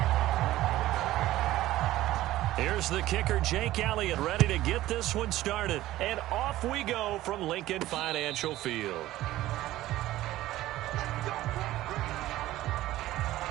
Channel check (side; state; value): left; quieter; 15.5 dB